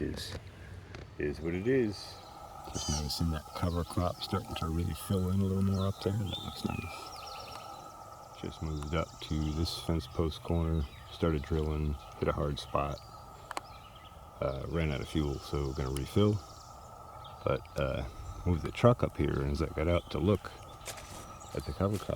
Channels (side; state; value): both; identical; correlation 1.00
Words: is what it is. Just noticing that cover crop starting to really fill in a little more up there. That looks nice. Just moved up to this fence post corner, started drilling, hit a hard spot. Ran out of fuel, so we're going to refill. But moved the truck up here, and as I got out to look at the cover